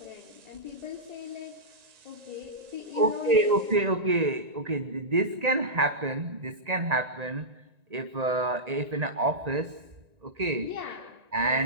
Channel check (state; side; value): late; left; 1.9 ms